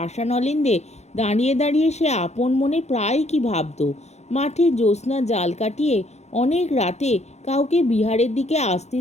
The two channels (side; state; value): right; late; 0.32 ms